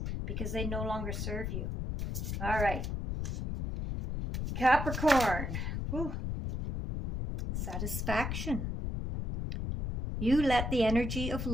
because they no longer serve you. All right. Capricorn. Whew. Satisfaction. You let the energy of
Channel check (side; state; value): left; noise; rumble, 2 dB below the sound